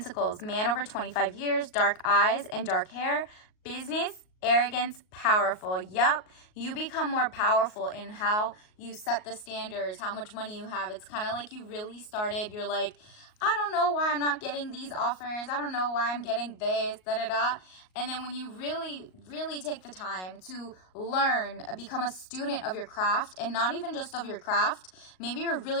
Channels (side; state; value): right; late; 38 ms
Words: man over 25 years, dark eyes and dark hair, business, arrogance, powerful. Yep, you become more powerful in how you set the standards, how much money you have. It's kind of like you really started, you're like, I don't know why I'm not getting these offers. I don't know why I'm getting this, da-da-da. And then when you really, really take the time to learn, become a student of your craft, and not even just of your craft. Maybe you're